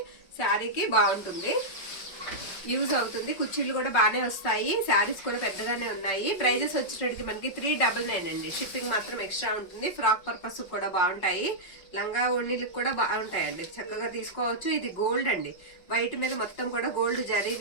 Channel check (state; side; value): late; right; 5.4 ms